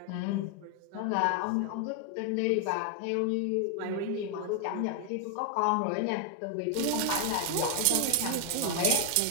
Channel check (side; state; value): both; different; correlation 0.00